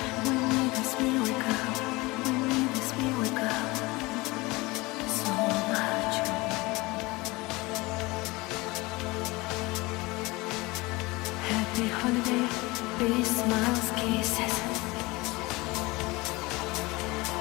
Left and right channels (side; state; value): right; quieter; 22.9 dB